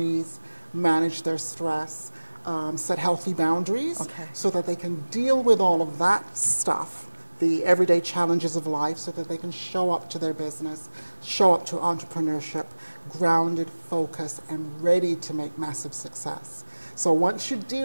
manage their stress, set healthy boundaries, so that they can deal with all of that stuff, the everyday challenges of life, so that they can show up to their business, show up to entrepreneurship, grounded, focused, and ready to make massive success. So once you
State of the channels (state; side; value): inverted; both; correlation -1.00